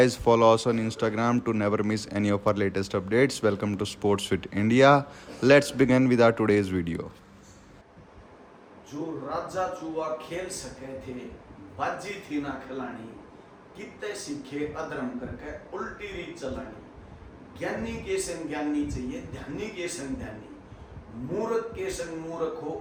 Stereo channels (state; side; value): identical; both; correlation 1.00